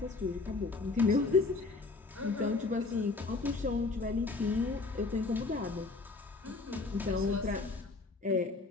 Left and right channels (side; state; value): right; quieter; 3.8 dB